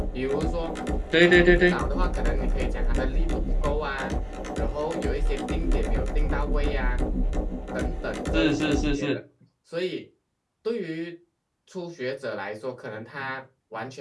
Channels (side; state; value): both; identical; correlation 1.00